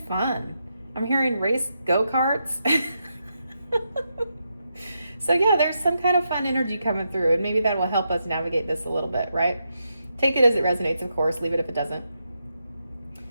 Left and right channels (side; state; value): both; inverted; correlation -0.83